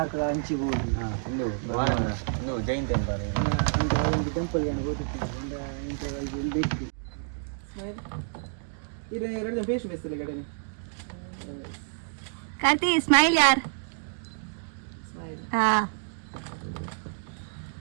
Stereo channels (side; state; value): left; silent; digital silence